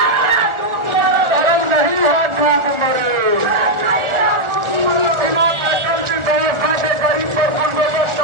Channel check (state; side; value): late; left; 1.4 ms